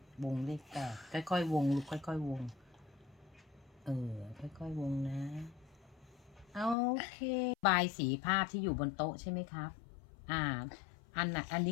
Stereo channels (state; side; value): drops out; right; at 6.8 s